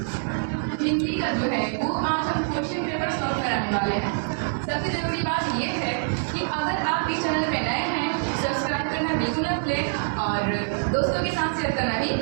हिंदी का जो है वो आज हम क्वेश्चन पेपर सॉल्व कराने वाले हैं। सबसे जरूरी बात ये है कि अगर आप इस चैनल पे नए हैं सब्सक्राइब करना बिल्कुल ना भूलें और दोस्तों के साथ शेयर करना भी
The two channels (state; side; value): silent; left; digital silence